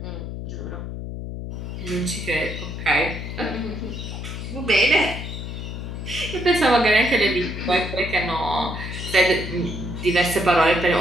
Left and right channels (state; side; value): noise; left; hum, 7 dB below the sound